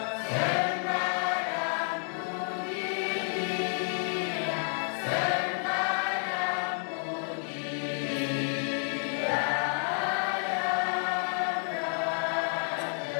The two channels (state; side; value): silent; right; 58 dB below the other